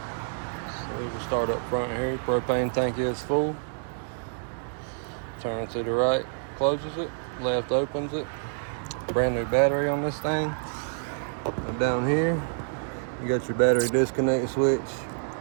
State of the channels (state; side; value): silent; left; digital silence